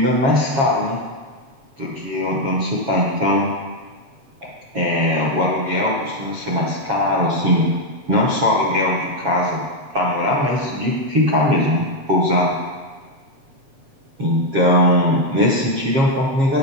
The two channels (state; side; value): late; left; 7.4 ms